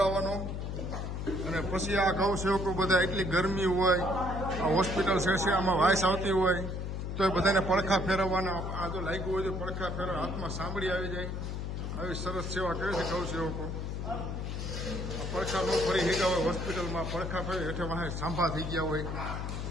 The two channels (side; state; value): left; noise; hum, 4 dB below the sound